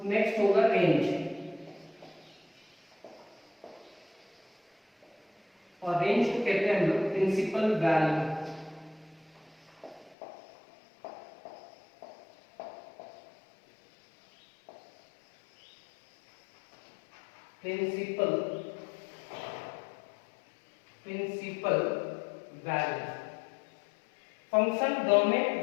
नेक्स्ट होगा रेंज। और रेंज को कहते हैं हम लोग principal value. Principal value, function, domain,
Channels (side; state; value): right; drops out; at 10.2 s